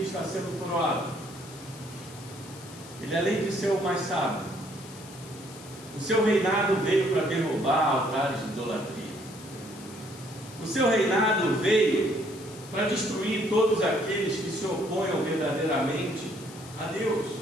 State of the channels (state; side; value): noise; left; hiss, 18 dB below the sound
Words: está sendo coroado, ele, além de ser o mais sábio, o seu reinado veio para derrubar altares de idolatria. O seu reinado veio para destruir todos aqueles que se oponham verdadeiramente a Deus.